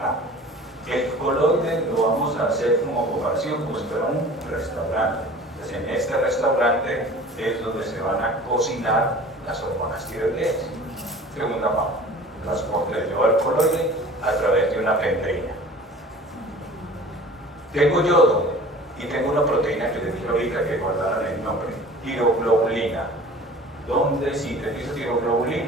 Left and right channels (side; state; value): both; normal; correlation 0.43